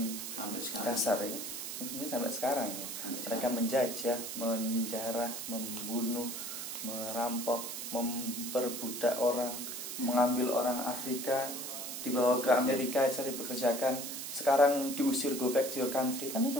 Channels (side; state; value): right; noise; hiss, 6 dB below the sound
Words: dasar ya. Mungkin sampai sekarang ya. Mereka menjajah, menjarah, membunuh, merampok, memperbudak orang, mengambil orang Afrika, dibawa ke Amerika, saya dipekerjakan, sekarang diusir, go back to your country. Kan itu